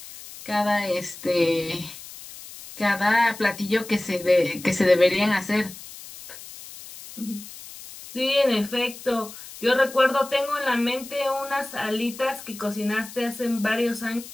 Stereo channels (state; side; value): noise; left; hiss, 15 dB below the sound